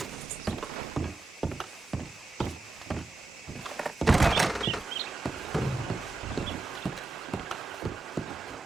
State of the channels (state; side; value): quieter; left; 3.5 dB